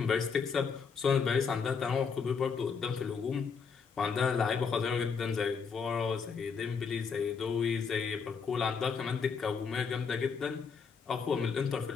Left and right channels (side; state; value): right; quieter; 5.8 dB